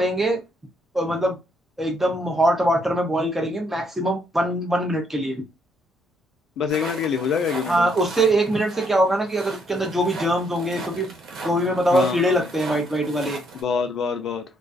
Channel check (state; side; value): normal; both; correlation 0.71